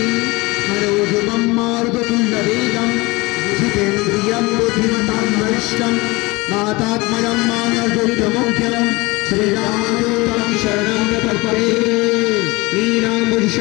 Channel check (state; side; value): quieter; right; 23.4 dB